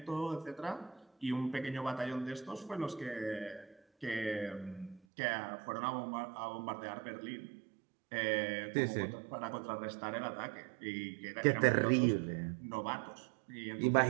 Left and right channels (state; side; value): drops out; left; at 5.0 s